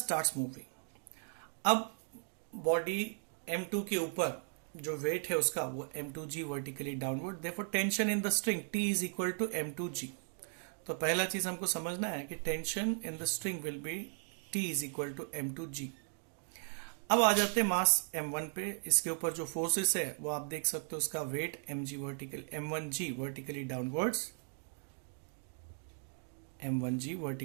starts moving. अब बॉडी m2 के ऊपर जो वेट है उसका वो m2g vertically downward, therefore tension in the string T is equal to m2g। तो पहला चीज हमको समझना है कि tension in the string will be T is equal to m2g। अब आ जाते हैं मास m1 पे। इसके ऊपर जो फोर्सेस है वो आप देख सकते हो, उसका weight m1g vertically downwards, m1g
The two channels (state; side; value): silent; left; 53 dB below the other